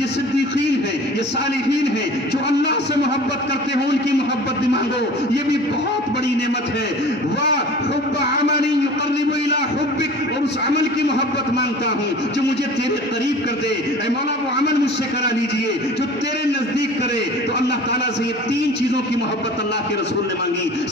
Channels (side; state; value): both; normal; correlation 0.42